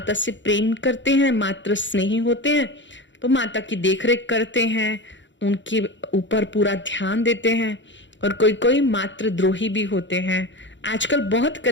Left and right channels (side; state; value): right; late; 0.54 ms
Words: से प्रेम करते हैं, मात्र स्नेही होते हैं, तो माता की देखरेख करते हैं, उनके ऊपर पूरा ध्यान देते हैं। और कोई कोई मात्र द्रोही भी होते हैं। आजकल बहुत